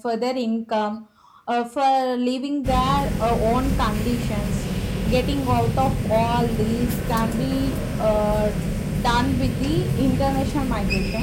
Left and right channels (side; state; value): both; identical; correlation 1.00